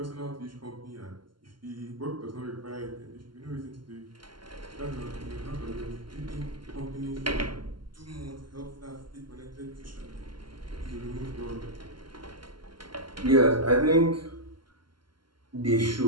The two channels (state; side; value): late; left; 0.72 ms